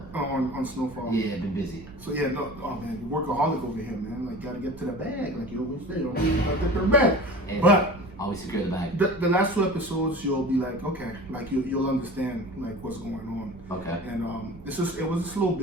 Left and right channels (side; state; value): right; noise; rumble, 18 dB below the sound